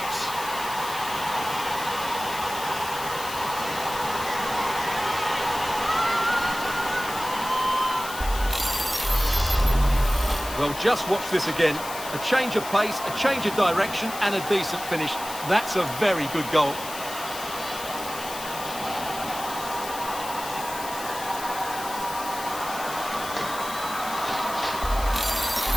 Well, just watch this again. A change of pace, a change of direction, and a decent finish. That's a very good goal.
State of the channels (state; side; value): noise; left; hiss, 10 dB below the sound